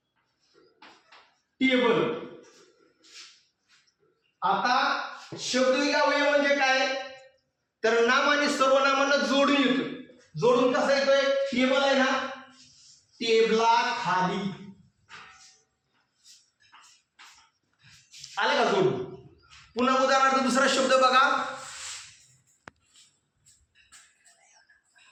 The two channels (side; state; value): both; identical; correlation 1.00